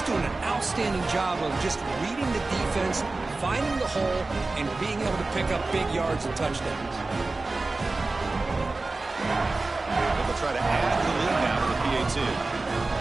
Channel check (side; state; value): left; quieter; 3.4 dB